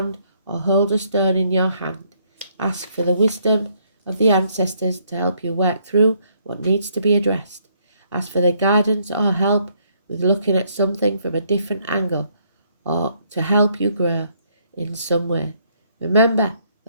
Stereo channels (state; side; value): inverted; both; correlation -0.69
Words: or hold a stone in your hand. Ask for the wisdom of the ancestors to help you work through what needs to be addressed. Ask for their guidance or help with looking at something from a different angle or to help you grow in some way. Remember